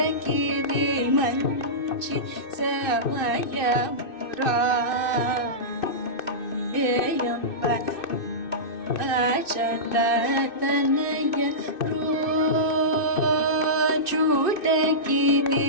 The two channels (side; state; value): right; late; 2.6 ms